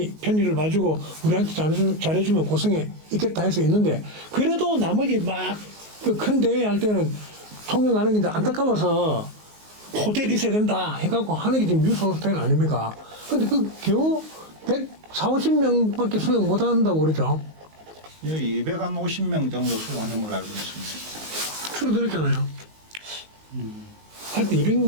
봐주고 우리한테 잘해주면 고성에 있겠다 해서 있는데 그래도 나머지 막 그 큰 대회 할 때는 통영 가는 게 이제 안타까워서 호텔이 있어야 된다 해갖고 하는 게 지금 유소 호텔 아닙니까? 근데 그 겨우 140~150명밖에 수용 못 한다고 그러죠. 여기 250명 정도 수용하는 걸로 알고 있습니다. 줄어들었잖아요. 하여튼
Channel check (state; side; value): late; left; 19 ms